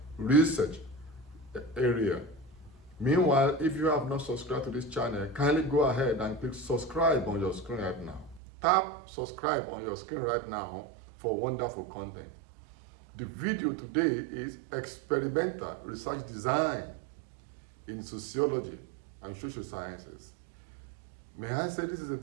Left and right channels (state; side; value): drops out; left; at 8.4 s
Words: research area. Meanwhile, if you have not subscribed to this channel, kindly go ahead and click subscribe on your screen right now. Tap subscribe on your screen right now for wonderful content. The video today is experimental research design in sociology and social sciences. May I say this is a